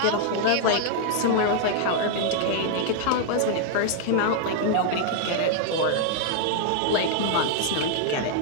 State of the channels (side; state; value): both; different; correlation 0.00